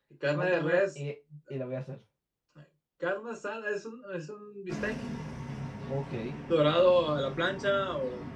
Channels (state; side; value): identical; both; correlation 1.00